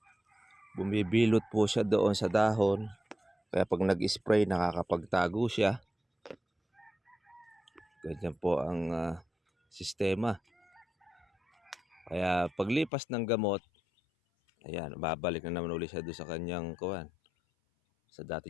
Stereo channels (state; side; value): drops out; right; at 12.9 s